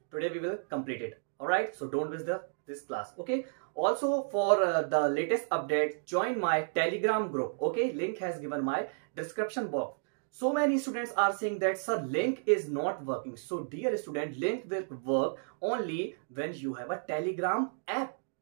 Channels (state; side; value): silent; left; digital silence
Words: today we will complete it. Alright, so don't miss this class. Okay, also for the latest update, join my Telegram group. Okay, link has given my description box. So many students are saying that sir, link is not working. So dear student, link will work only when you have a Telegram app.